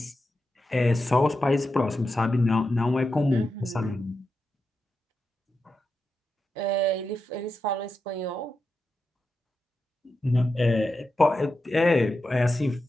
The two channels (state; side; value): normal; both; correlation 0.88